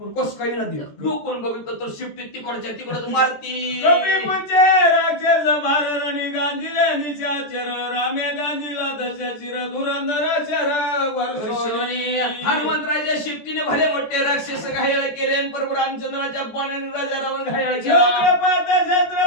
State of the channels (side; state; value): right; late; 14 ms